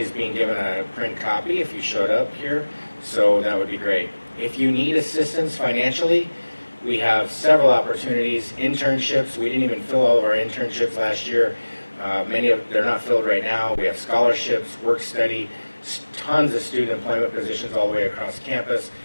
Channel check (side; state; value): both; inverted; correlation -1.00